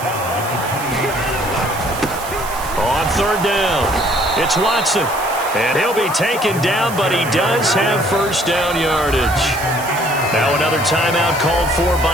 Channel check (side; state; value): right; noise; hiss, 13 dB below the sound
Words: On 3rd down, it's Watson. And he'll be taken down, but he does have first down yardage. Now another timeout called for